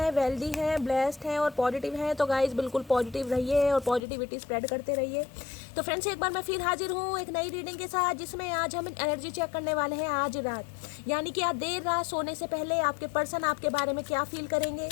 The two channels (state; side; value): drops out; right; at 4.0 s